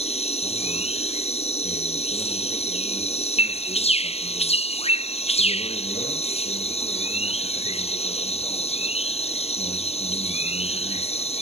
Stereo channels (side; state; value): right; late; 0.30 ms